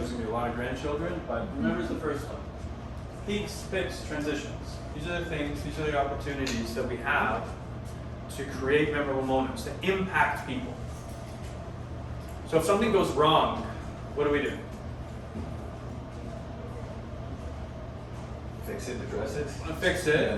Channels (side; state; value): both; identical; correlation 1.00